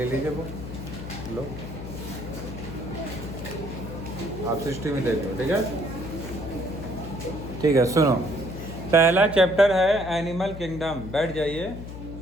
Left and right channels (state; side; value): noise; left; hum, 10 dB below the sound